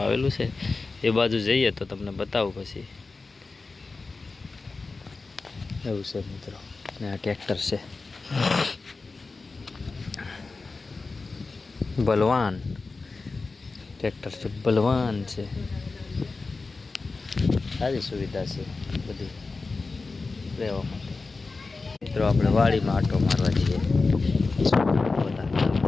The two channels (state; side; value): quieter; right; 3.9 dB